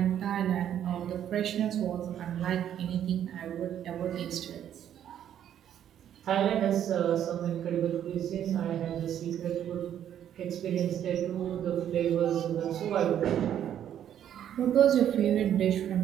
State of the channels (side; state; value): left; quieter; 10.2 dB